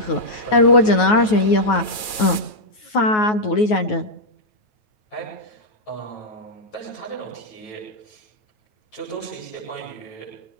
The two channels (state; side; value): late; right; 9.4 ms